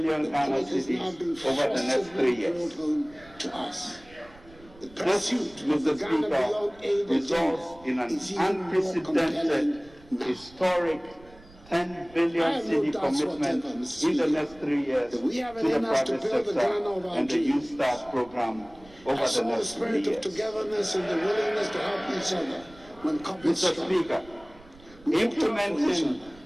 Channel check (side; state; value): right; noise; rumble, 23 dB below the sound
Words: Ghana cedis over the next 3 years. This, Mr. Speaker, results in an unprecedented, historic 10 billion cedi commitment in the next 3 years to the private sector and the Youth Start program over the next 3 years. Togetherness and the willingness to help each other when Mr. Speaker, implementing